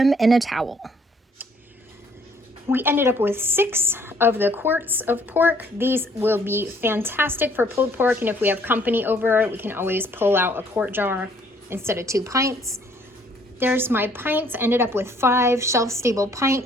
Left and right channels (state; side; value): normal; both; correlation 0.62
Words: in a towel. We ended up with 6 of the quarts of pork. These will be fantastic for pulled pork, and if we have company over, we can always pull out a quart jar instead of 2 pints. There's my pints. Ended up with 5 shelf-stable